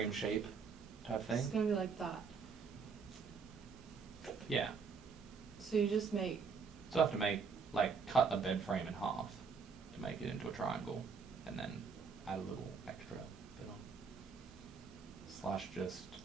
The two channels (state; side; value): quieter; left; 5.5 dB